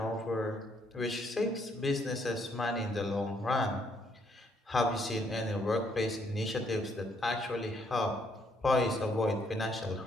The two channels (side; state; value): both; normal; correlation 0.71